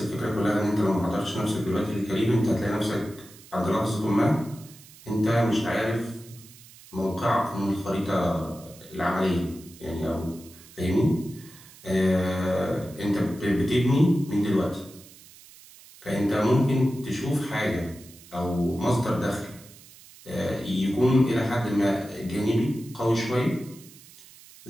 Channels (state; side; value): noise; right; hiss, 22 dB below the sound